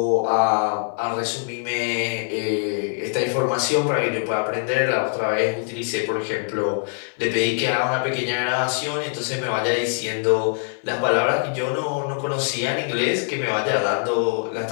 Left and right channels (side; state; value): right; silent; 63 dB below the other